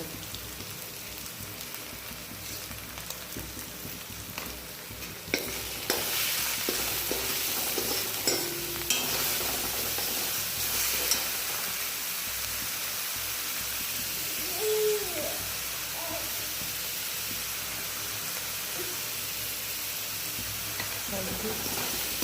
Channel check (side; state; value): both; identical; correlation 1.00